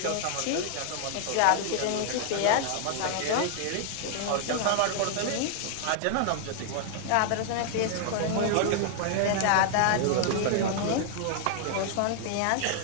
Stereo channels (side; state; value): both; different; correlation 0.00